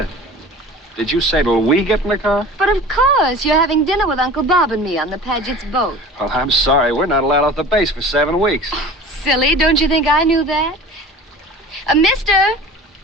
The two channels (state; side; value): normal; both; correlation 0.40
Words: Did you say till we get in the car? But of course, you're having dinner with Uncle Bob and me on the Paget's boat. Well, I'm sorry. We're not allowed off the base for 7 weeks. Silly, don't you think I knew that? Mister,